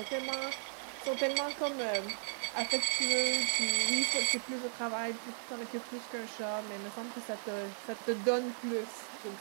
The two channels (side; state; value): left; silent; 54 dB below the other